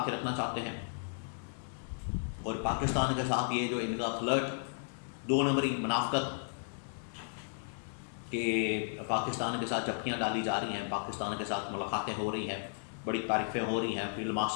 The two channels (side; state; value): right; silent; digital silence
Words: کے رکھنا چاہتے ہیں، اور پاکستان کے ساتھ یہ جو ان کا فلرٹ، 2 نمبری منافقت کہ پاکستان کے ساتھ جھپکیاں ڈالی جا رہی ہیں، پاکستان کے ساتھ ملاقاتیں ہو رہی ہیں، بڑی تعریفیں ہو رہی ہیں فیلڈ